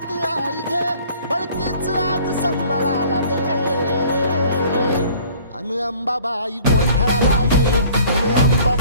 आई घे, बळतेच आज संबळाला दे. अन अंबाबाई गोंधळाला ये, अन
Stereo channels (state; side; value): inverted; both; correlation -0.52